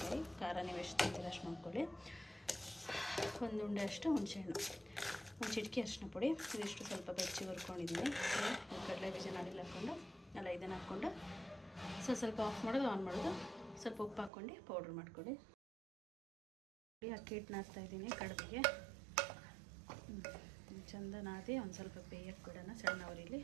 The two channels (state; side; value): drops out; left; at 14.3 s